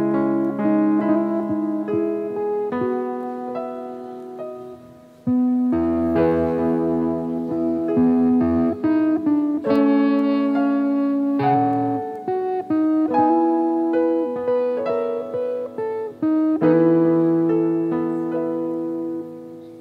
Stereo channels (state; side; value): identical; both; correlation 1.00